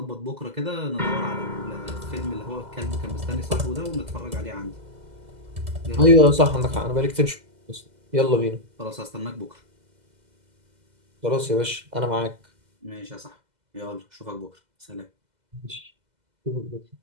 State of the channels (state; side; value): late; left; 2.0 ms